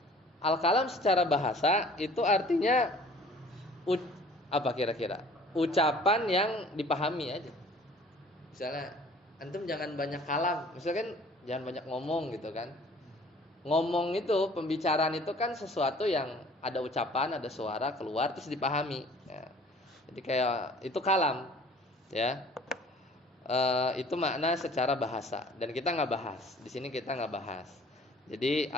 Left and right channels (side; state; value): both; normal; correlation 0.51